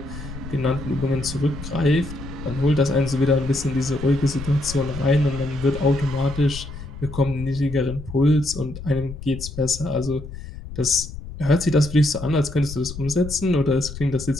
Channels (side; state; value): left; noise; rumble, 11 dB below the sound